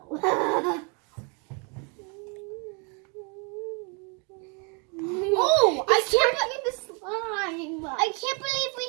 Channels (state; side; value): quieter; left; 34.8 dB